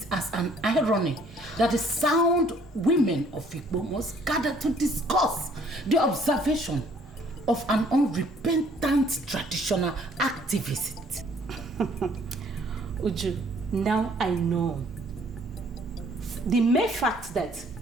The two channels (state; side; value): normal; both; correlation 0.60